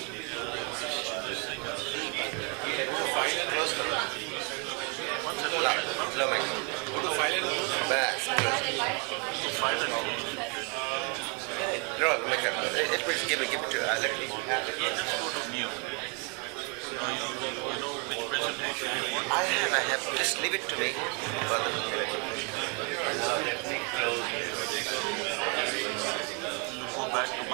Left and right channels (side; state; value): left; quieter; 35.2 dB